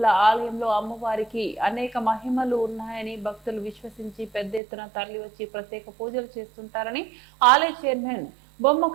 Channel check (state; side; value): drops out; left; at 4.6 s